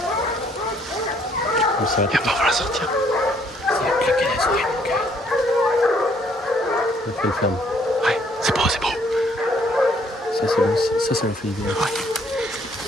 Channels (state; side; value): normal; both; correlation 0.65